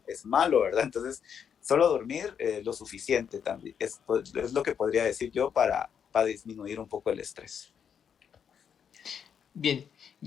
es malo, ¿verdad? Entonces, solo dormir lo suficiente también es lo que podría decir yo para disminuir un poco el estrés. Bien,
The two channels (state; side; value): quieter; right; 7.8 dB